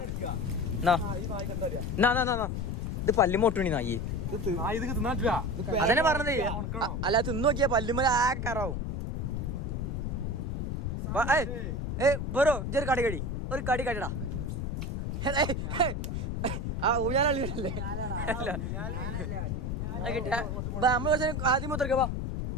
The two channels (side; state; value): left; noise; rumble, 2 dB below the sound